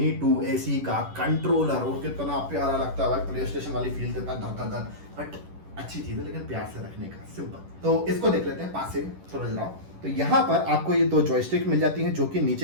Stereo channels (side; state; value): left; late; 10 ms